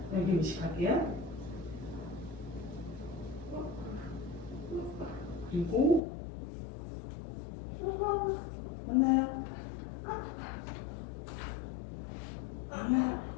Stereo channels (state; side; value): drops out; right; at 6.0 s